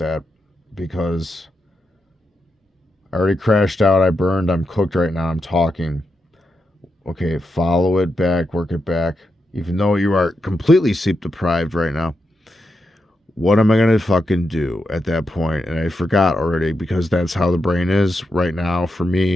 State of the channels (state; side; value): normal; both; correlation 0.86